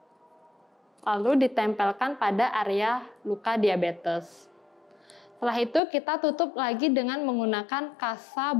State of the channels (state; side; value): drops out; right; at 5.8 s